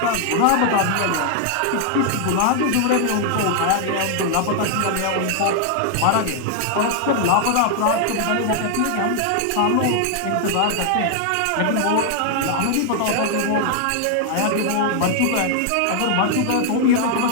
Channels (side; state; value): both; different; correlation 0.00